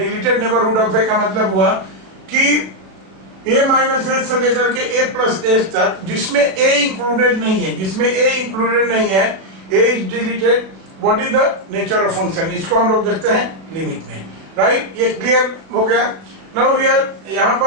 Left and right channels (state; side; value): late; left; 36 ms